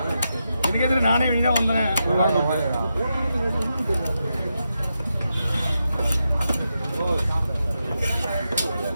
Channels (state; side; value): inverted; both; correlation -0.87